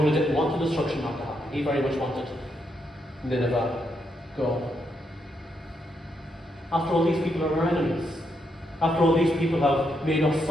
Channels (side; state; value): both; normal; correlation 0.79